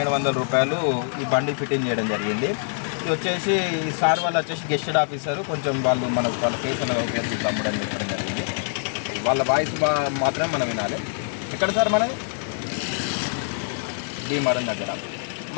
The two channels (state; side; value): silent; right; digital silence